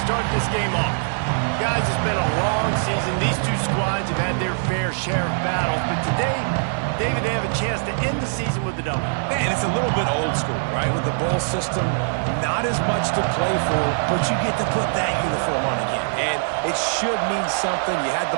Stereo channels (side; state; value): left; silent; 59 dB below the other